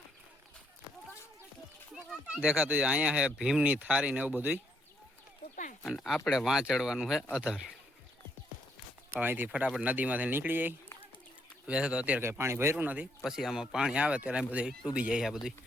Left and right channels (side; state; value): both; normal; correlation 0.72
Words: દેખાતું છે અહીંયા છે ભીમની થારી ને એવું બધું. અને આપણે વાં ચડવાનું છે અધર. અહીંથી ફટાફટ નદીમાંથી નીકળી જાય. વੈસે તો અત્યારે કંઈ પાણી ભર્યું નથી, પછી આમાં પાણી આવે ત્યારે બધું ડૂબી જાય. આ બધું